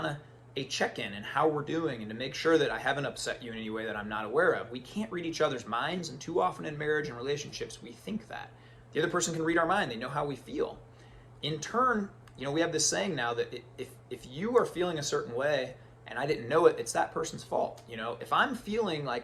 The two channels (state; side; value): identical; both; correlation 1.00